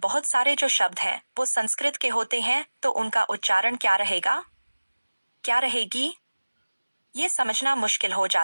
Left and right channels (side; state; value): both; inverted; correlation -1.00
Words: सारे जो शब्द हैं वो संस्कृत के होते हैं, तो उनका उच्चारण क्या रहेगा, क्या रहेगी, ये समझना मुश्किल हो